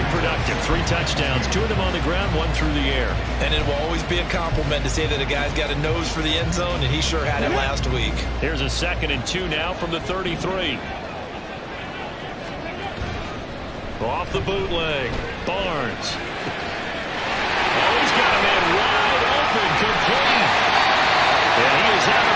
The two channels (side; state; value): both; identical; correlation 1.00